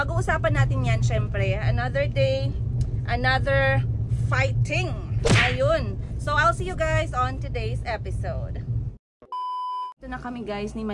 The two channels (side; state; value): both; identical; correlation 1.00